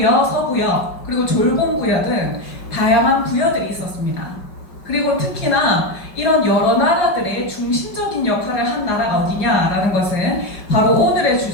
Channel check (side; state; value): right; late; 5.3 ms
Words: 서부여 그리고 졸봉부여 등 다양한 부여들이 있었습니다. 그리고 특히나 이런 여러 나라들의 중심적인 역할을 한 나라가 어디냐라는 것은 바로 오늘의